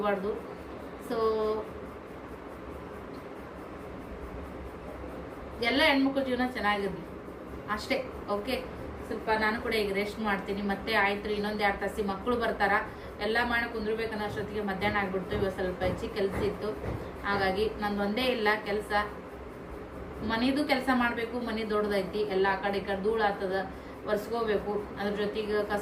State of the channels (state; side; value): identical; both; correlation 1.00